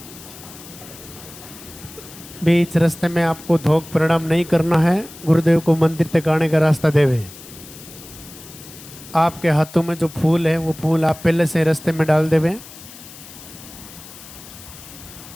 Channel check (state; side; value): noise; left; hiss, 17 dB below the sound